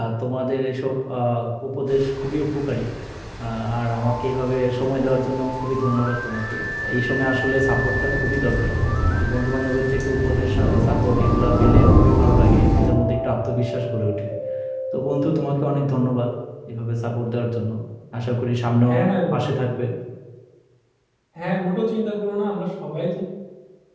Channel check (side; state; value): both; identical; correlation 1.00